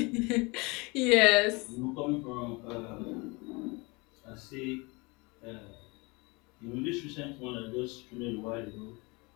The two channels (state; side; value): quieter; right; 26.8 dB